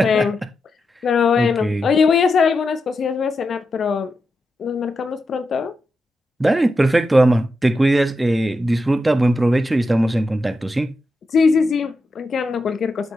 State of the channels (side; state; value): both; normal; correlation 0.88